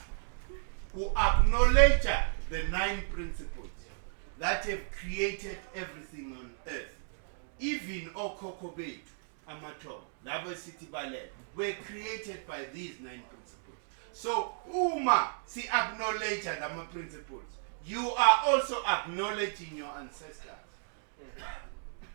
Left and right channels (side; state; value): left; silent; digital silence